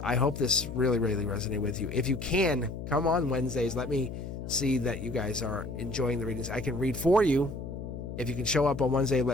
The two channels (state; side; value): noise; left; hum, 8 dB below the sound